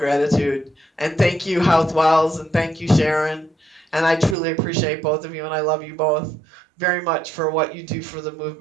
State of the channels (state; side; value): drops out; left; at 4.4 s